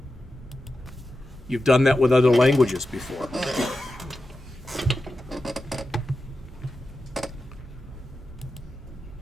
You've done that with other languages before.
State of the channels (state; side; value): normal; both; correlation 0.91